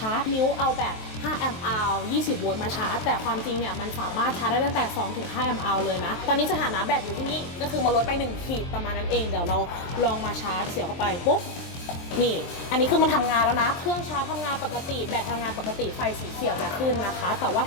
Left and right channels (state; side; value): late; right; 23 ms